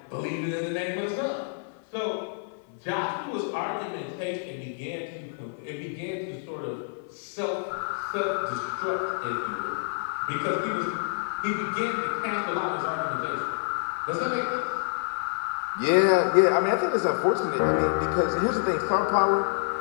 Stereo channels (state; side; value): silent; right; 57 dB below the other